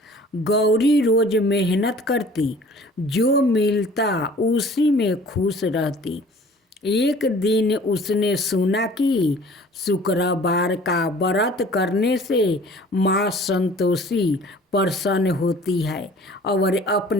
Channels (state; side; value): normal; both; correlation 0.49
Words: गौरी रोज मेहनत करती, जो मिलता उसी में खुश रहती। एक दिन उसने सुना कि शुक्रवार का व्रत करने से माँ संतोषी प्रसन्न होती है और